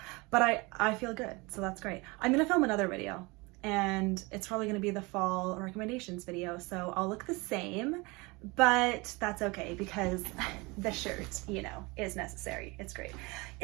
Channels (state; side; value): quieter; left; 25.6 dB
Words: but I feel good. So that's great. I'm going to film another video, and it's probably going to be the fall recommendations video. So I'll look the same, but that's okay because the shirt, you know, is necessary. It's great.